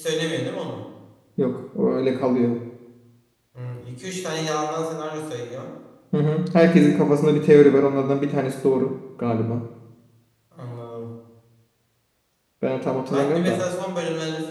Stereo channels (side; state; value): both; identical; correlation 1.00